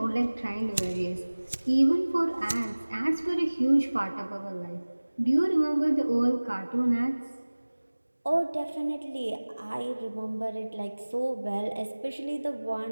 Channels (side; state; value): both; inverted; correlation -1.00